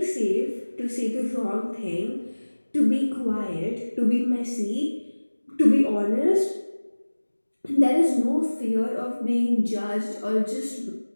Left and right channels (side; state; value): both; inverted; correlation -1.00